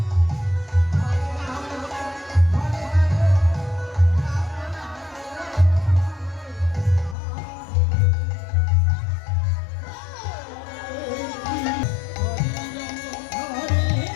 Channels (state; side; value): drops out; right; at 7.2 s